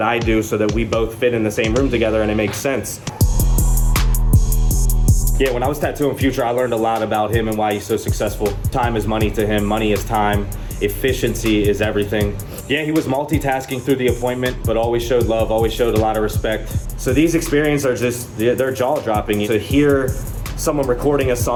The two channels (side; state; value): both; identical; correlation 1.00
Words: I do so that we both fit in the same room together and it makes sense. Yeah, when I was tattooing Future, I learned a lot about him and why he's so successful. Time is money to him, money is time. Efficiency is everything. Yeah, he was multitasking through the appointment, but always showed love, always showed a lot of respect. So these experiences are just, they're jaw-dropping. To hear someone recording a